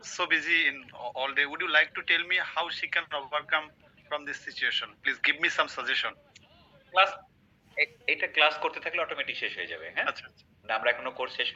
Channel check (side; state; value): both; identical; correlation 1.00